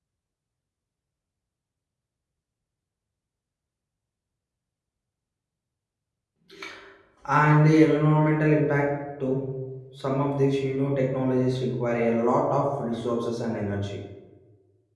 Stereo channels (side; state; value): both; identical; correlation 1.00